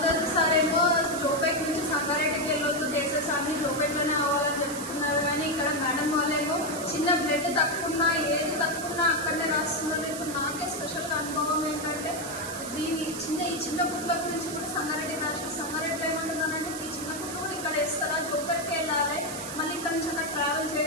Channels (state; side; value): noise; right; hiss, 9 dB below the sound